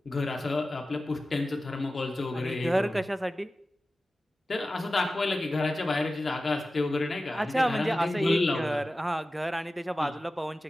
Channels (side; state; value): both; normal; correlation 0.95